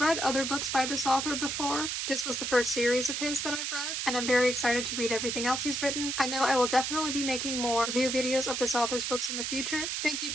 other books by this author before, this was the first series of his that I've read, and I'm very excited to read everything else he's written. I know I will definitely be making more review videos of this author's books in the future. Thank you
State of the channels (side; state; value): right; noise; hiss, 2 dB below the sound